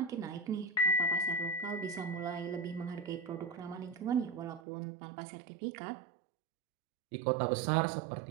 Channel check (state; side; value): drops out; left; at 4.6 s